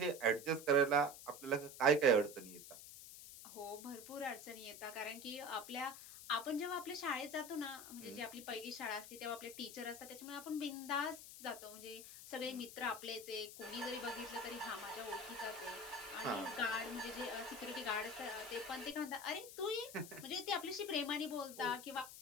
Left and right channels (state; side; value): noise; left; hiss, 13 dB below the sound